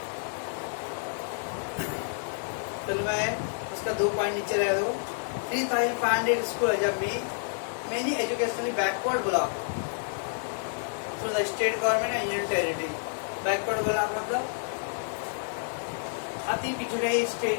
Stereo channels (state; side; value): silent; right; digital silence